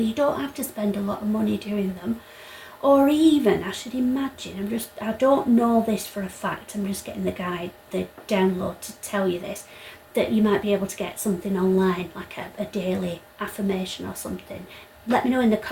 You don't have to spend a lot of money doing them. Or even, I should imagine, I don't know this for a fact, I'm just getting the guide, the download to tell you this, that you might be able to get something online, like a daily affirmation or something. Let me know in the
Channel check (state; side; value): identical; both; correlation 1.00